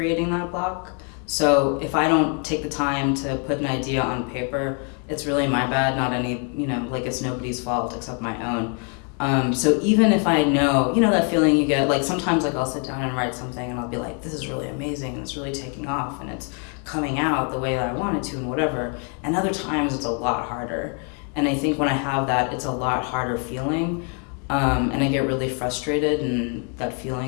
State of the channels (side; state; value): right; quieter; 39.5 dB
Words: that block. So if I don't take the time to put an idea on paper, it's really my bad, not any, it's nobody's fault except my own. So even if I know, that feeling you get, sometimes I'll sit down and write something and I'll be like, this is really amazing and it's really taking off and it's coming out the way that I wanted to and whatever. And other times it's a lot harder. And I think when I have that, it's a lot harder feeling. And I get really frustrated and that